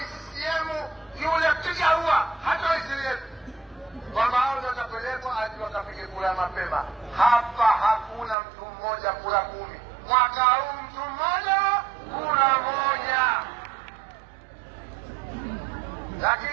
CCM, yule piga huwa hata waisilieni kwamba hao ndio watapelekwa hadi wakapige kura mapema. Hapa hakuna mtu mmoja kura 10. Mwaka huu mtu mmoja kura 1.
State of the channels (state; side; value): drops out; left; at 8.3 s